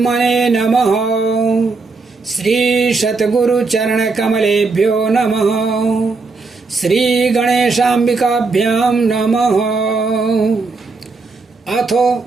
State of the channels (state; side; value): quieter; left; 4.0 dB